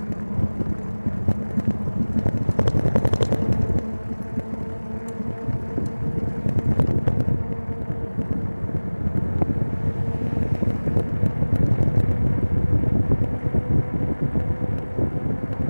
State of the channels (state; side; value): inverted; both; correlation -1.00